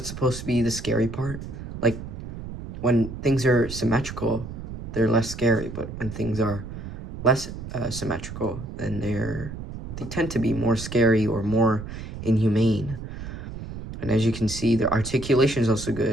supposed to be the scary part. Like, when things are symmetrical, they're less scary, but when things are less symmetrical, then they tend to be more scary or more inhumane. And as you can see, the articulation is also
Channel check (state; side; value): noise; right; rumble, 10 dB below the sound